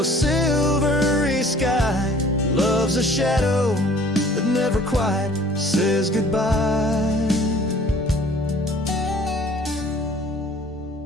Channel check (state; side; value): normal; both; correlation 0.53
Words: silvery sky. Love's a shadow that never quite says goodbye.